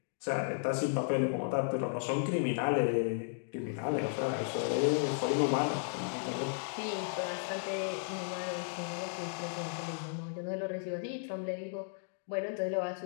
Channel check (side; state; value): right; silent; digital silence